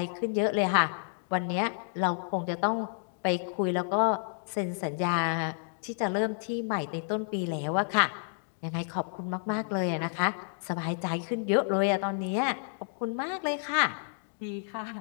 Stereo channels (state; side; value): silent; right; digital silence